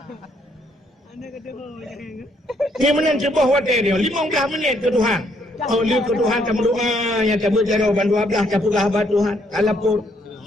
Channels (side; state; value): both; normal; correlation 0.70